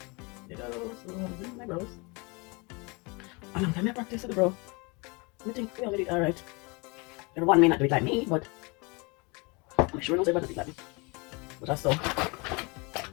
My brows. A long time I practice it, bro. I think we all did it alright. Everyone may not do it like me, but I'm sure knows everyone does it like me. But that's so.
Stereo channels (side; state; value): right; quieter; 28.8 dB